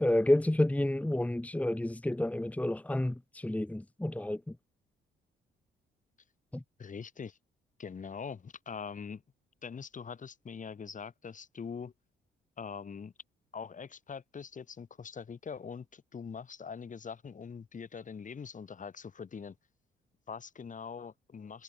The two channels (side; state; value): both; normal; correlation 0.92